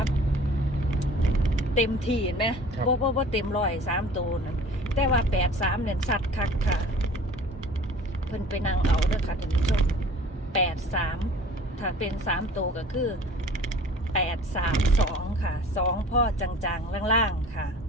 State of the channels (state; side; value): normal; both; correlation 0.46